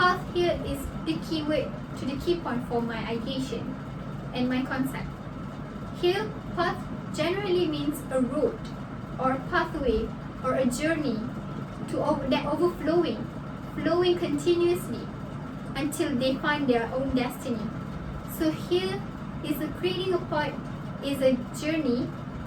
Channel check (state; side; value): identical; both; correlation 1.00